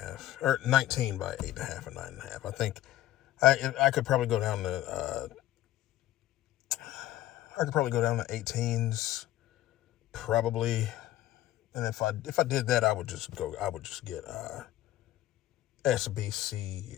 or 19 by 8.5 and 9.5. I think I could probably go down to 18s, probably. And if I did that, I would just get SBC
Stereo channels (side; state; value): right; quieter; 14.3 dB